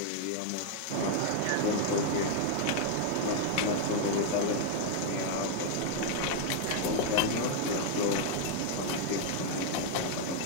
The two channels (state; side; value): different; both; correlation 0.00